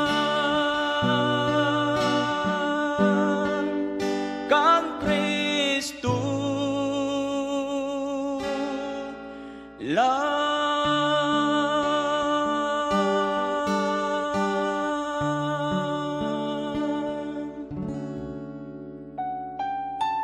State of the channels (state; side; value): identical; both; correlation 1.00